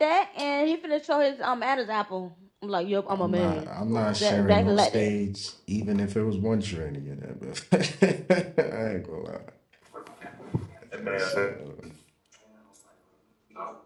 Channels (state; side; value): identical; both; correlation 1.00